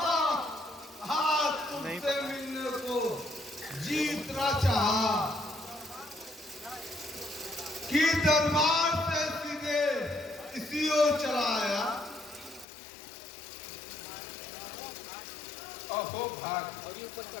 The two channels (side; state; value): right; drops out; at 12.7 s